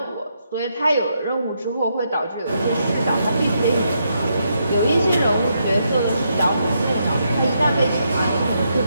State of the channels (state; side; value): inverted; both; correlation -0.79